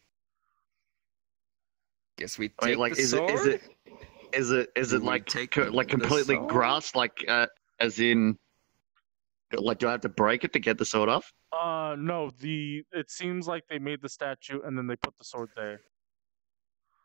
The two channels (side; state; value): left; quieter; 32.2 dB